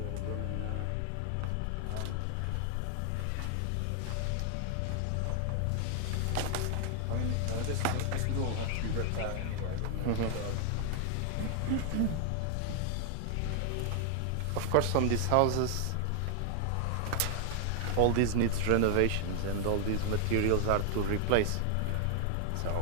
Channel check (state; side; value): different; both; correlation 0.00